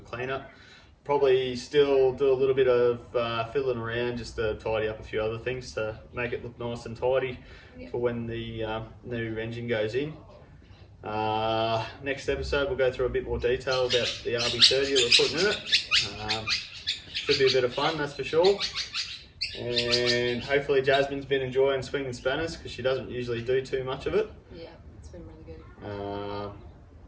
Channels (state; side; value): identical; both; correlation 1.00